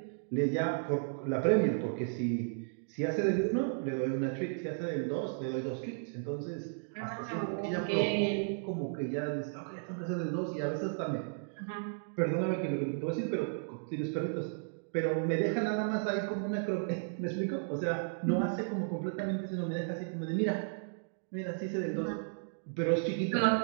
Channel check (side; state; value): left; silent; digital silence